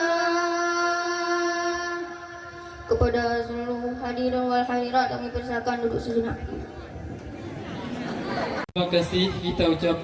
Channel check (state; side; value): identical; both; correlation 1.00